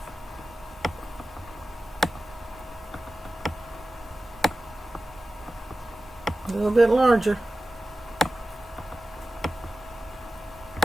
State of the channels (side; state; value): both; normal; correlation 0.95